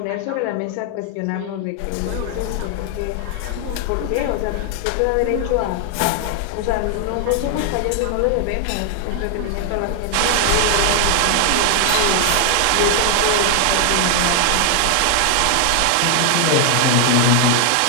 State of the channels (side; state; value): both; different; correlation 0.00